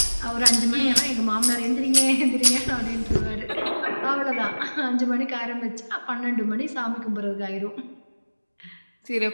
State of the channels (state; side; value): inverted; both; correlation -1.00